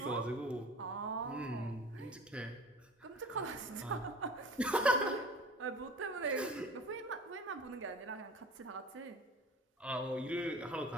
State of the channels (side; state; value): both; normal; correlation 0.41